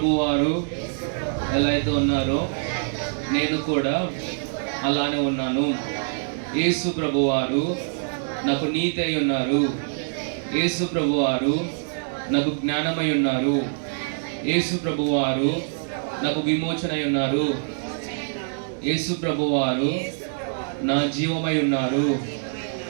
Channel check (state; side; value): silent; left; digital silence